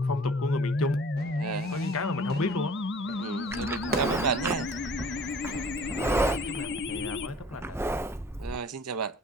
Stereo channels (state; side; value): normal; both; correlation 0.50